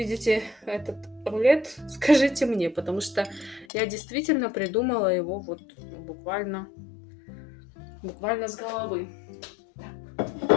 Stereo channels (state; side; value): drops out; right; at 3.7 s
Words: этот рулет, скажите мне, потому что я действительно придумала его вот буквально с головы.